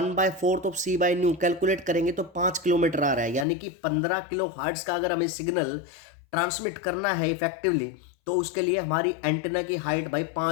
of C by nu calculate करेंगे तो 5 किलोमीटर आ रहा है। यानी कि 15 किलो हर्ट्ज का अगर हमें सिग्नल ट्रांसमिट करना है इफेक्टिवली तो उसके लिए हमारी एंटीना की हाइट भाई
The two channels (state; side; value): drops out; right; at 3.5 s